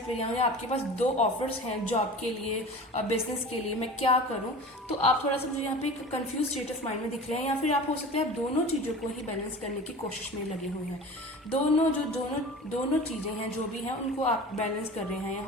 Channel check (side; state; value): both; normal; correlation 0.36